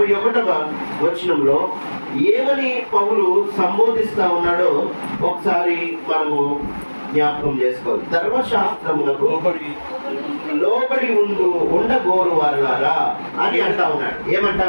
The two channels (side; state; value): both; inverted; correlation -1.00